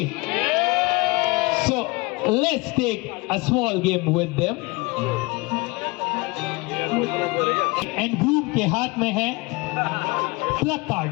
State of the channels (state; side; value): quieter; right; 25.3 dB